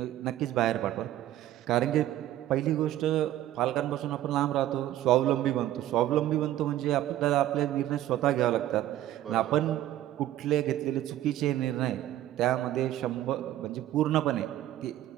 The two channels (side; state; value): left; quieter; 13.3 dB